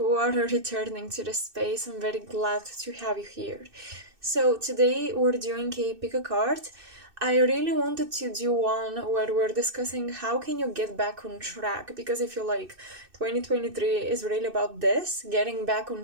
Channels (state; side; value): late; left; 2.6 ms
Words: are returning to the space. I'm very glad to have you here. So today we're doing a pick a card. I really wanted to do one where we're discussing how can you get back on track, because I feel like 2023 is really about this, getting back